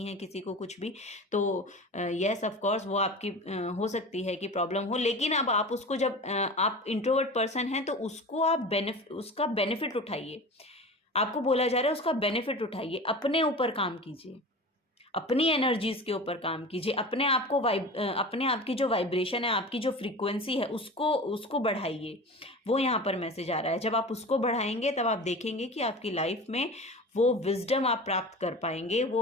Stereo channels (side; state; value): both; normal; correlation 0.34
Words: हैं किसी को कुछ भी, तो यस ऑफ कोर्स वो आपकी हो सकती है कि प्रॉब्लम हो। लेकिन अब आप उसको, जब आप इंट्रोवर्ट पर्सन हैं तो उसको आप उसका बेनिफिट उठाइए। आपको बोला जा रहा है उसका बेनिफिट उठाइए, अपने ऊपर काम कीजिए, अपनी एनर्जीज के ऊपर काम कीजिए, अपने आप को अपने आप की जो वाइब्रेशन है, आपकी जो फ्रीक्वेंसी है, उसको बढ़ाइए। वो यहाँ पर मैसेज आ रहा है। जब आप उसको बढ़ाएंगे तब आप देखेंगे कि आपकी लाइफ में वो विजडम आप प्राप्त कर पाएंगे,